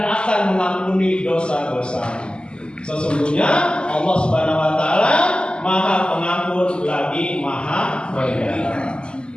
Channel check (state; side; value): late; right; 0.050 ms